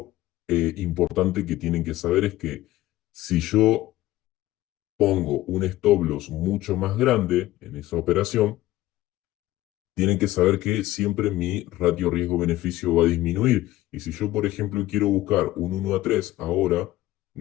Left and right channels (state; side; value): quieter; right; 16.0 dB